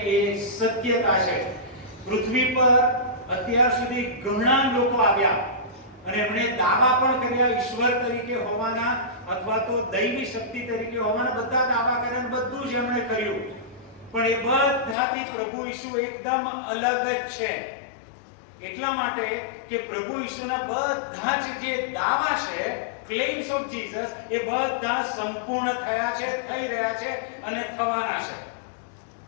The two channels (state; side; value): drops out; right; at 15.0 s